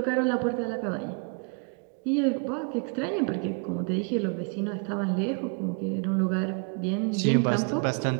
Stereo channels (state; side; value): quieter; left; 38.8 dB